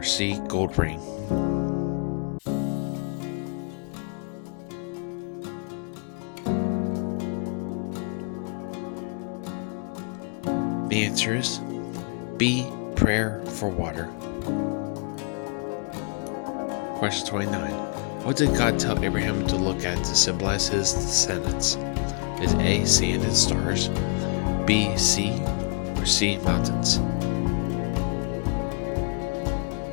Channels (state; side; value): quieter; right; 38.9 dB